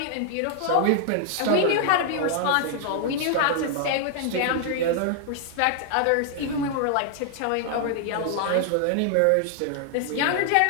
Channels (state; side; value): different; both; correlation 0.00